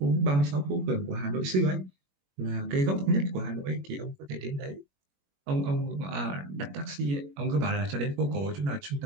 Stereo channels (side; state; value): left; late; 21 ms